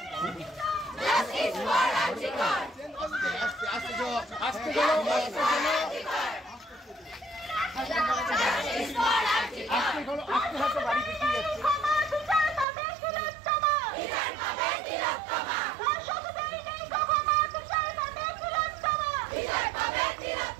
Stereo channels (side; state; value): left; drops out; at 12.7 s